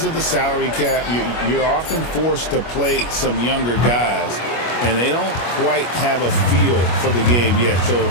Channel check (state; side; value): late; right; 25 ms